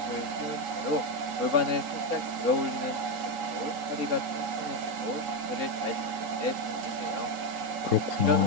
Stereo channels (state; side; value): late; left; 3.8 ms